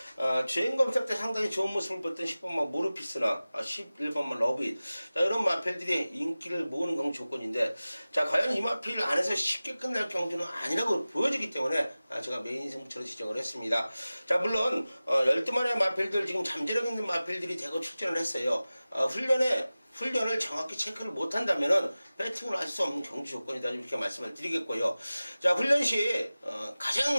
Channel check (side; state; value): both; inverted; correlation -0.97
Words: 주행 검사 때 상당히 좋은 모습을 보였던 10번마 모르피스나 11번마 러브잇 이런 마필들이 인기를 모으는 경주 조건인데 자, 과연 이 마필 안에서 쉽게 끝날 경주는 아니라고 보여지기 때문에 제가 메인 승부처로 지정을 했습니다. 자, 물론 12마리의 마필들 지금 잠재력 있는 마필들이 대거 출전을 했어요. 훈련을 정확히 체크를 못한다면은 배팅을 할 수 없는 경주 조건이다 이렇게 말씀을 드리겠고요. 자, 훈련 시